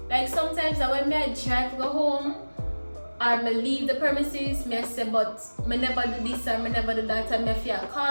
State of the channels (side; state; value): both; inverted; correlation -1.00